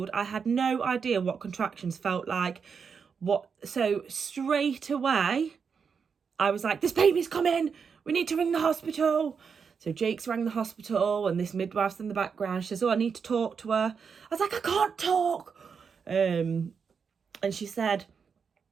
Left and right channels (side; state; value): left; quieter; 6.1 dB